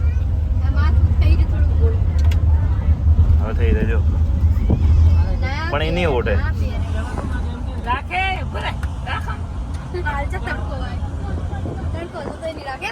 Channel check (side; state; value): both; identical; correlation 1.00